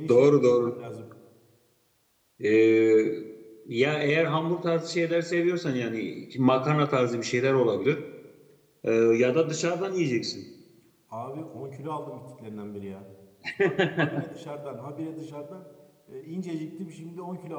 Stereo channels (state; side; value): identical; both; correlation 1.00